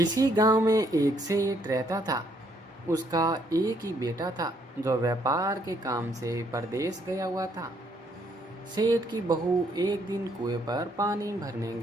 गांव में एक सेठ रहता था। उसका एक ही बेटा था जो व्यापार के काम से परदेश गया हुआ था। सेठ की बहू एक दिन कुएं पर पानी भरने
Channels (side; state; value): both; normal; correlation 0.70